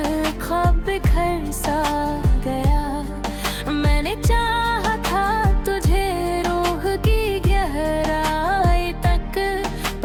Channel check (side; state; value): both; identical; correlation 1.00